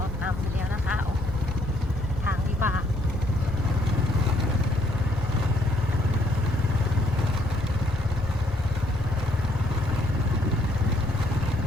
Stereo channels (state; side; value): noise; left; rumble, 11 dB below the sound